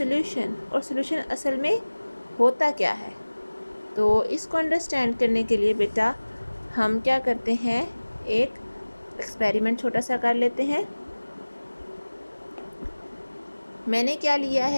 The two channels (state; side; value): inverted; both; correlation -1.00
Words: और सॉल्यूशन असल में होता क्या है। तो इसको अंडरस्टैंड करने के लिए बेटा हम क्या करते हैं, एक एक्सपेरिमेंट छोटा सा कर लेते हैं। मैंने क्या लिया